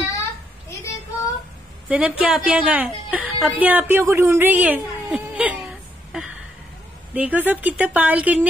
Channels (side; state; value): both; normal; correlation 0.75